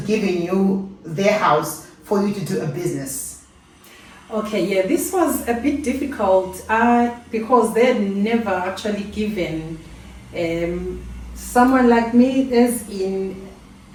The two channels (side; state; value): both; identical; correlation 1.00